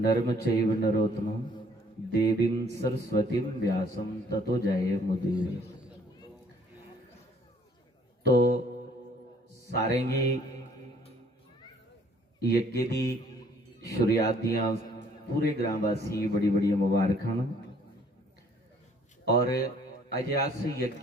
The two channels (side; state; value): both; normal; correlation 0.60